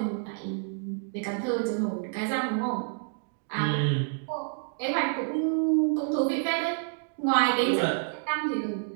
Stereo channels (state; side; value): silent; left; 59 dB below the other